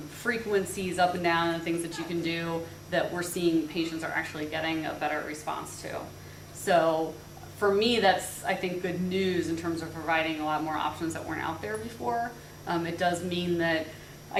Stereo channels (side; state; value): both; identical; correlation 1.00